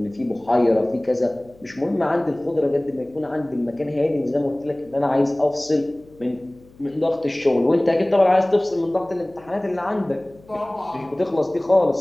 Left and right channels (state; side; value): noise; left; hum, 26 dB below the sound